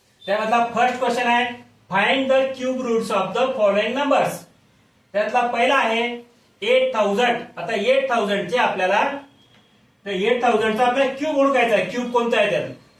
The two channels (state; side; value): identical; both; correlation 1.00